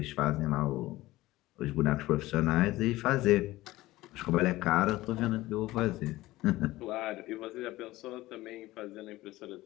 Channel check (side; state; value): right; quieter; 17.7 dB